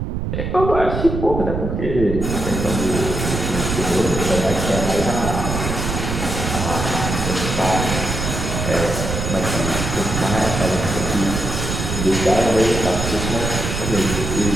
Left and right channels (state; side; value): noise; right; rumble, 3 dB below the sound